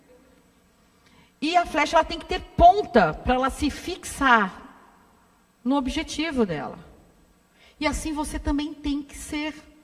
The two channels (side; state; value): both; identical; correlation 1.00